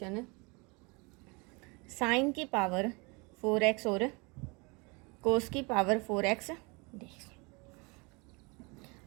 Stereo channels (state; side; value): quieter; left; 29.0 dB